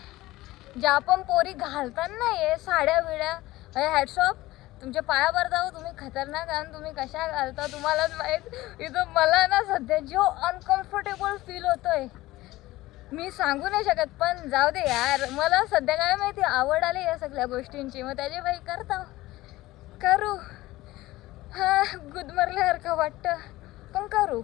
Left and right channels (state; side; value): quieter; right; 17.8 dB